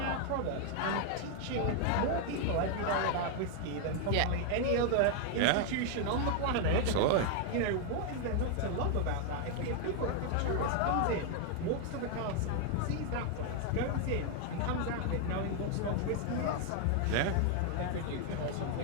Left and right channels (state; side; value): different; both; correlation 0.00